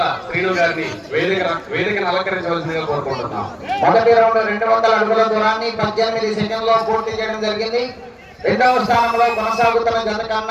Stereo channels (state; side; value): identical; both; correlation 1.00